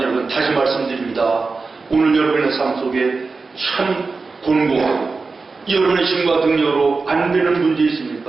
여러분, 다시 말씀드립니다. 오늘 여러분의 삶 속에 참 곤고하고 여러분의 힘과 능력으로 안 되는 문제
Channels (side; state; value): left; quieter; 4.2 dB